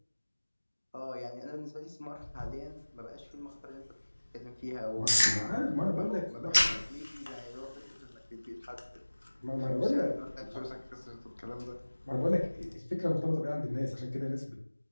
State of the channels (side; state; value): both; inverted; correlation -1.00